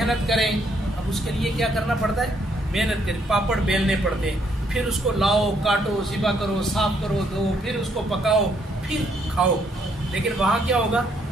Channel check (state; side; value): normal; both; correlation 0.71